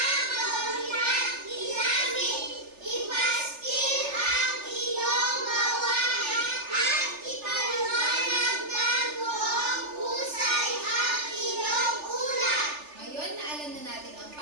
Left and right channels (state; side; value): late; left; 3.4 ms